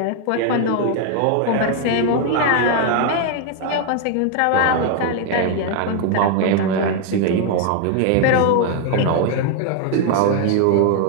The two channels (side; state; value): both; different; correlation 0.00